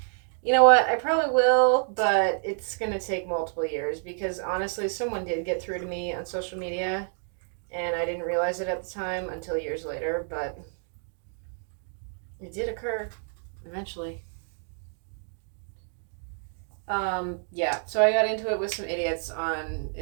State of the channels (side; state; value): left; silent; 58 dB below the other